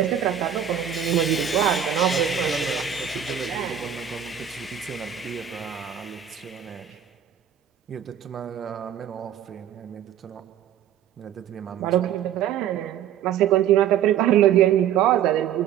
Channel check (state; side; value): quieter; left; 9.6 dB